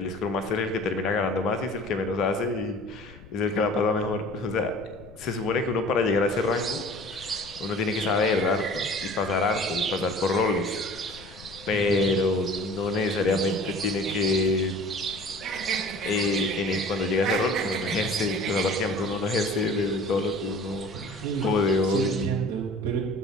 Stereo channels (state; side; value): noise; left; rumble, 19 dB below the sound